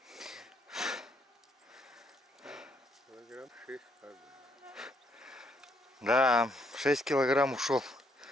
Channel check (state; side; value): normal; both; correlation 0.71